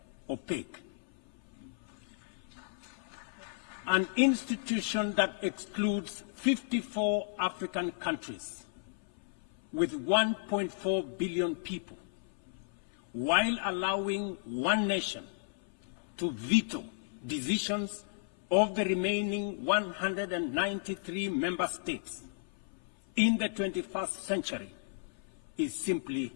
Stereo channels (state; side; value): silent; right; 55 dB below the other